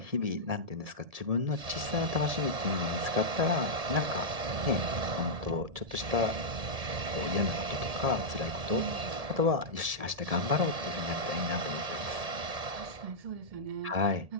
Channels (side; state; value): left; late; 1.7 ms